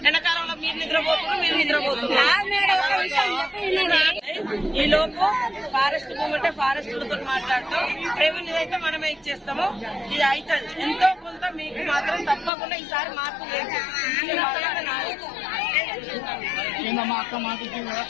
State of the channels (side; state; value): right; drops out; at 12.5 s